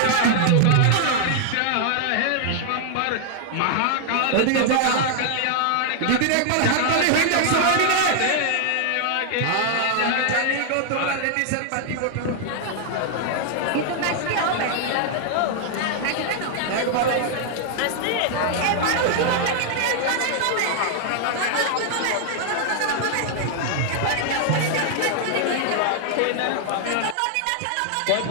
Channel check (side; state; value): both; different; correlation 0.00